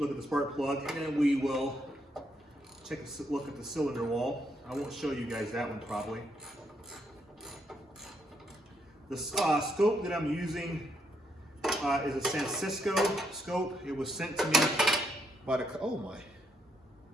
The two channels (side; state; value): both; normal; correlation 0.76